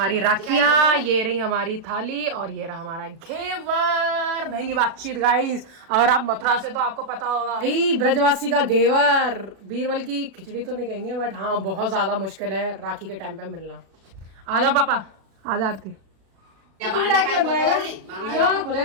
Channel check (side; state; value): left; late; 37 ms